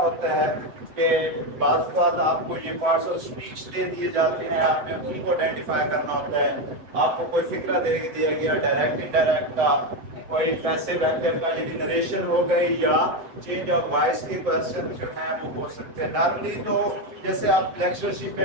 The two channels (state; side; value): late; left; 7.9 ms